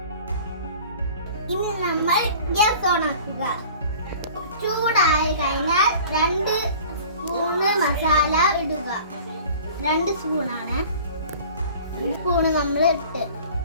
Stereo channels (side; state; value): both; inverted; correlation -0.45